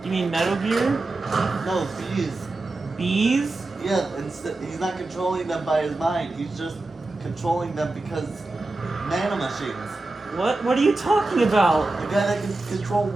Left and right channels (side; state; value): left; quieter; 3.1 dB